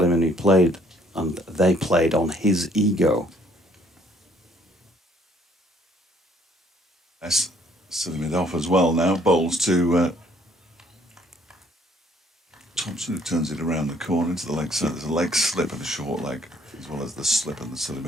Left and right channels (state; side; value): normal; both; correlation 0.63